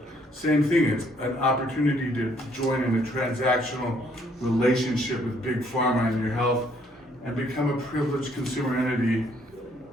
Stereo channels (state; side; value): normal; both; correlation 0.66